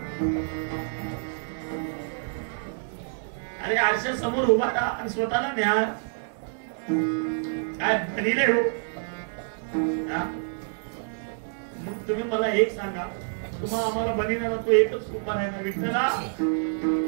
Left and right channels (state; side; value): silent; left; 60 dB below the other